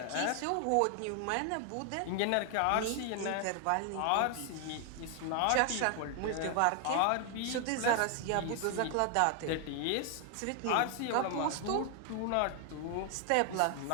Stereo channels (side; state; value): both; different; correlation 0.00